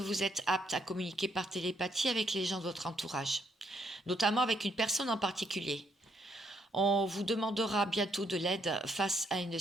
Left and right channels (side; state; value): both; normal; correlation 0.73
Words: êtes apte à communiquer par télépathie avec les gens de votre entourage, notamment avec une personne en particulier. On vous demandera bientôt de l'aide face à une